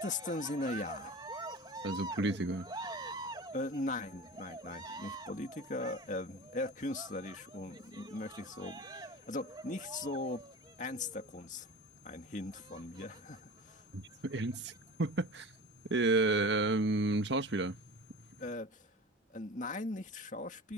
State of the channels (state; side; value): normal; both; correlation 0.34